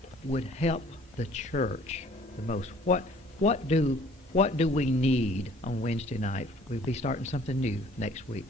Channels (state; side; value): normal; both; correlation 0.55